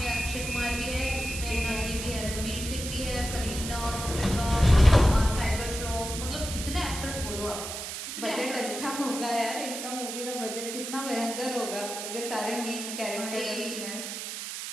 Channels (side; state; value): right; noise; hiss, 6 dB below the sound